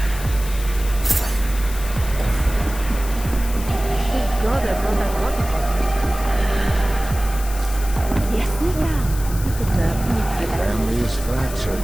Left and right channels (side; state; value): left; noise; hiss, 13 dB below the sound